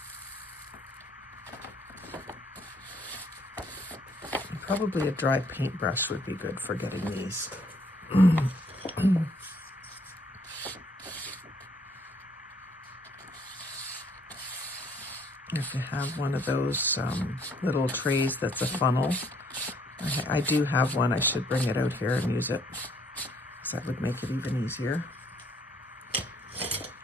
Probably a dry paintbrush would be good for getting these. If you have one of those little trays that's a funnel, I do have one. I should bring it out here and use it, because that would make it even easier.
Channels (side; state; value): both; normal; correlation 0.65